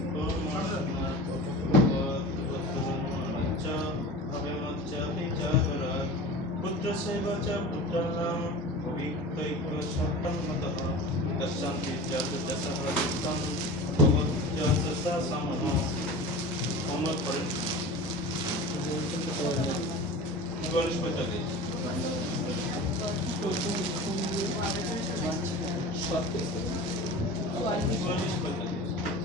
पुत्रसेव च पुत्राणां भवितैक सत्तन्मतः दशान्ति च दशः दुःखं भगवत्या समः होमवर्क करें 44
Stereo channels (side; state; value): both; normal; correlation 0.34